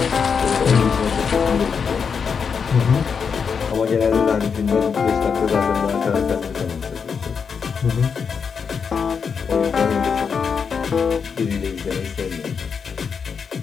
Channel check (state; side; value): quieter; right; 6.2 dB